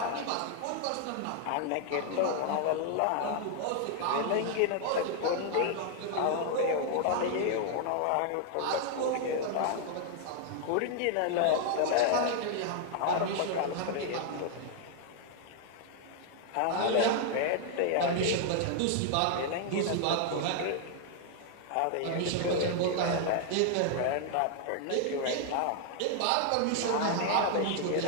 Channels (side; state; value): both; different; correlation 0.00